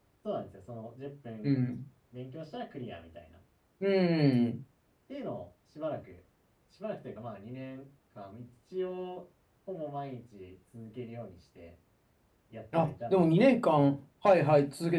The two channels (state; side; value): identical; both; correlation 1.00